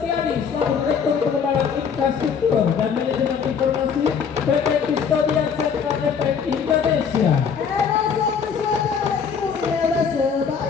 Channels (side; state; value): right; quieter; 6.6 dB